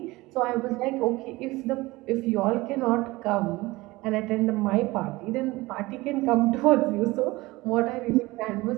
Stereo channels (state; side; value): quieter; left; 20.6 dB